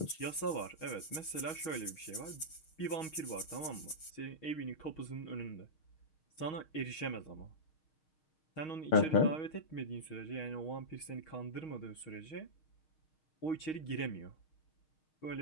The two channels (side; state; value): right; late; 6.5 ms